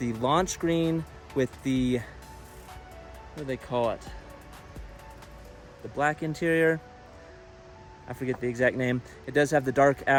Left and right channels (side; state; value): both; identical; correlation 1.00